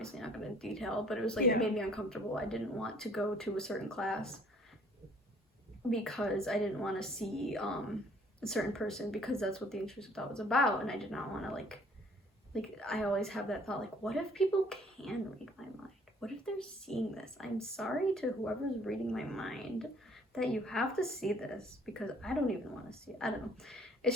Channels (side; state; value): both; normal; correlation 0.57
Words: not going to detail, but it was like, it made me uncomfortable. I didn't want to go to a certain class because I didn't want to see a certain person, because that's what the intrusive thought was about, and I did not want to like I always have that thought, like, what if people can read my mind? What if there's seeing this. I'm sorry to whoever's reading my mind that you have to see this, because I don't even want to see it. I don't know. It's